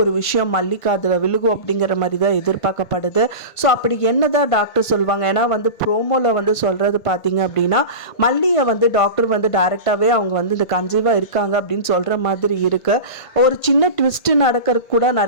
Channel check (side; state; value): right; late; 1.5 ms